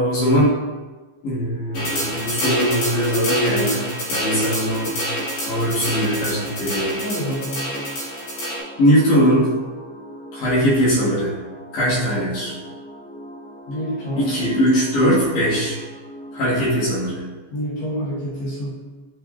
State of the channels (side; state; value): right; late; 15 ms